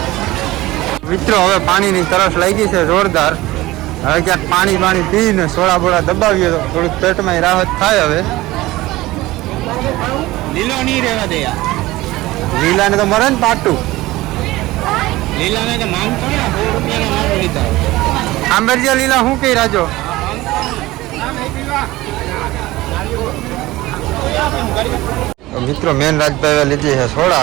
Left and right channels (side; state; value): left; quieter; 18.4 dB